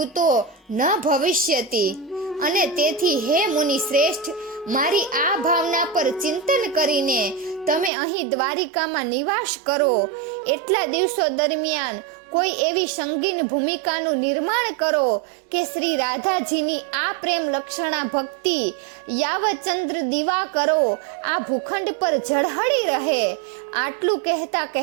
ન ભવિષ્યતી. અને તેથી હે મુનિ શ્રેષ્ઠ, મારી આ ભાવના પર ચિંતન કરીને તમે અહીં દ્વારિકામાં નિવાસ કરો. એટલા દિવસો દરમિયાન કોઈ એવી સંગીન ભૂમિકાનું નિર્માણ કરો કે શ્રી રાધાજીની આ પ્રેમ લક્ષણા ભક્તિ યાવચંદ્ર દીવા કરો આ ભૂખંડ પર ઝળહળી રહે. આટલું કહેતા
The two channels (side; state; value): left; drops out; at 7.9 s